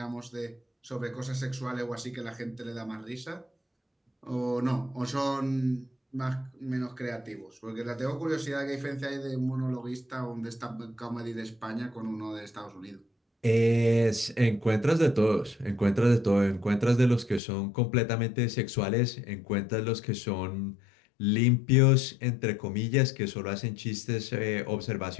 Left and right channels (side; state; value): right; drops out; at 17.4 s